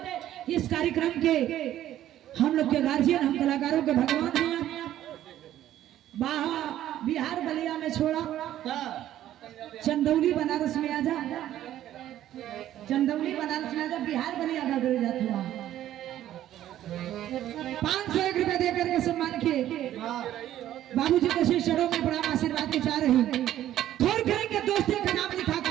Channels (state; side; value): quieter; left; 12.5 dB